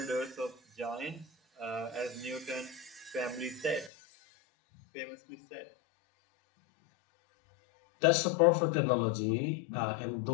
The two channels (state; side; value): drops out; right; at 3.9 s